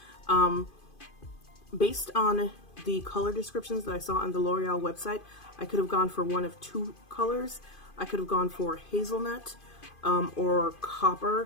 Based on the color descriptions that I saw on the L'Oreal website, I could have gone for one of two colors. I could have gone for hazelnut or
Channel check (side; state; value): right; late; 2.5 ms